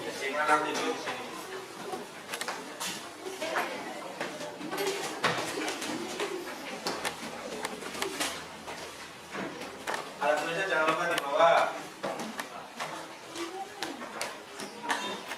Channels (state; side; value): identical; both; correlation 1.00